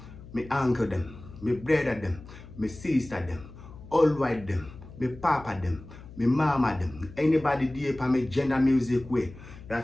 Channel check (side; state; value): left; noise; hum, 17 dB below the sound